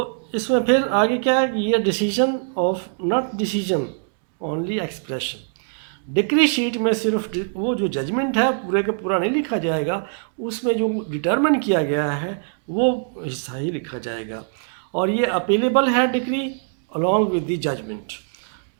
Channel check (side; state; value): left; silent; digital silence